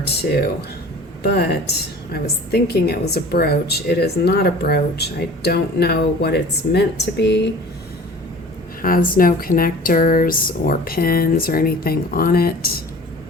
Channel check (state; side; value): normal; both; correlation 0.43